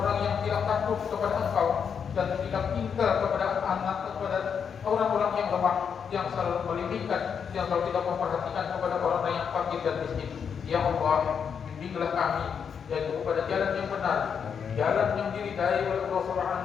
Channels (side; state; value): right; quieter; 7.0 dB